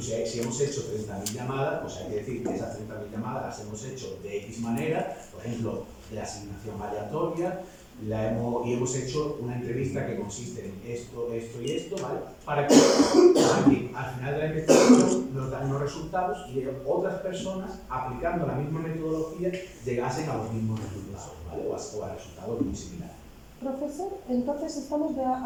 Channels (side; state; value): both; identical; correlation 1.00